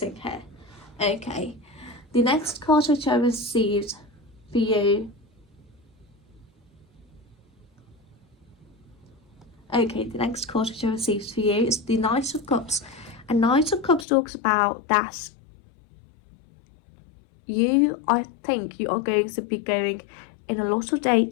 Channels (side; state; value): right; drops out; at 14.1 s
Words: here. Okay, the next card which I received for you. Okay, the next card which I received for you is the Knight of Cups, and Knight of Cups talks about that I think you are going to be going in a lot of